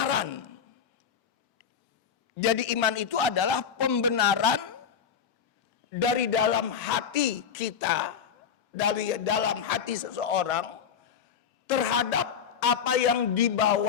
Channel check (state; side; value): quieter; right; 7.3 dB